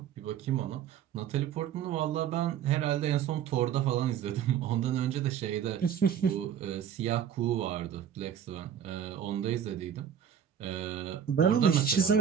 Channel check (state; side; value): quieter; left; 8.8 dB